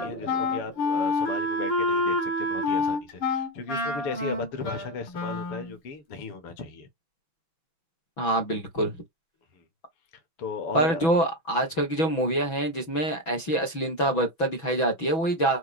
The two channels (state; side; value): late; right; 6.1 ms